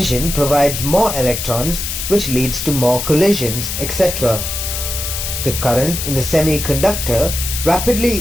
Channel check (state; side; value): noise; left; hiss, 4 dB below the sound